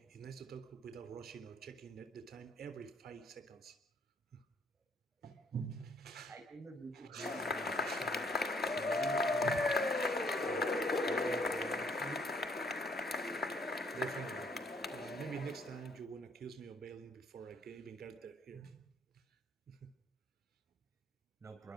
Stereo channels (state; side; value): normal; both; correlation 0.66